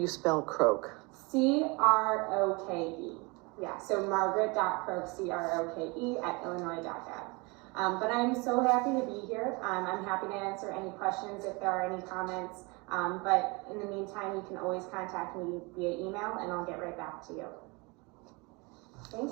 spell Croke. C-R-O-K-E. Yeah, so margaret.croke, C-R-O-K-E at illinois.gov. But I'm so happy to be here. I'm happy to answer any questions if there are any comments. But in the meantime, you can always contact me via email and I'll get right back to you.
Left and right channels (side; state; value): left; quieter; 27.7 dB